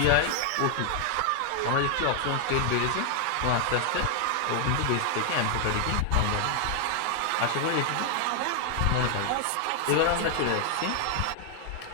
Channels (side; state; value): both; different; correlation 0.00